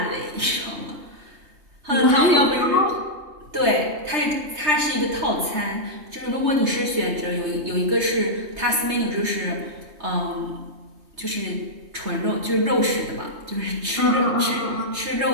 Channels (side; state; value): left; late; 3.3 ms